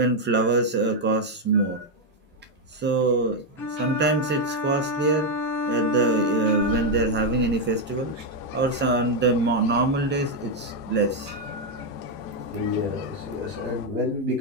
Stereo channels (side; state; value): both; normal; correlation 0.03